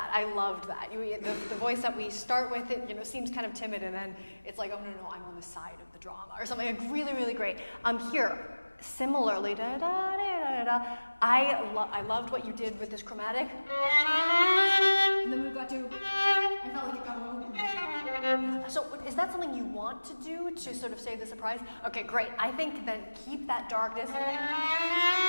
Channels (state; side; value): inverted; both; correlation -1.00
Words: I loved that. The voice that we start with, it seems kind of timid, and then it's like, oh no, I'm on the side of the drama or something. Like really, really great. Here, similarly, I loved what you did with this chromatic. And then we got to, I felt like it got a little. So is that something you want to do to sort of save the surprise? Okay, great. I think then keep that darkness.